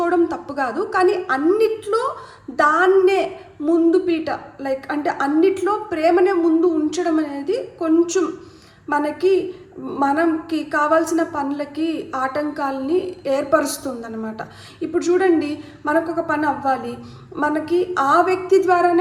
తప్పు కాదు, కానీ అన్నిట్లో దాన్నే ముందు పీట, లైక్ అంటే అన్నిట్లో ప్రేమనే ముందు ఉంచడం అనేది కొంచెం మనకి కావాల్సిన పనులకి ఆటంకాలని ఏర్పరుస్తుందన్నమాట. ఇప్పుడు చూడండి, మనకు ఒక పని అవ్వాలి, మనకి ఆ వ్యక్తి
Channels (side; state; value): both; identical; correlation 1.00